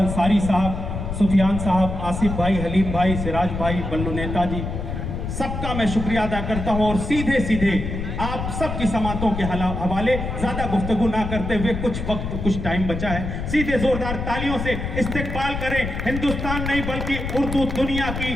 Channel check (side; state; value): left; noise; rumble, 5 dB below the sound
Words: साहब, सुफियान साहब, आसिफ भाई, हलीम भाई, सिराज भाई, बल्लू नेताजी, सबका मैं शुक्रिया अदा करता हूँ। और सीधे सीधे आप सबकी समातों के हवाले ज़्यादा गुफ्तगू ना करते हुए, कुछ वक्त कुछ टाइम बचा है, सीधे जोरदार तालियों से इस्तकबाल करें हिंदुस्तान नहीं बल्कि उर्दू दुनिया की